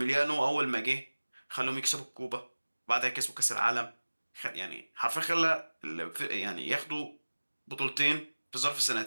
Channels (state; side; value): inverted; both; correlation -1.00